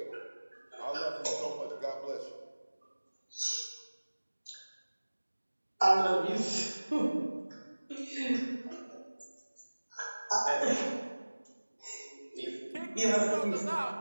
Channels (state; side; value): inverted; both; correlation -1.00